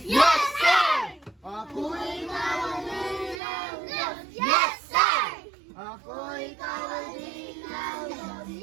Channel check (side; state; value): left; drops out; at 3.4 s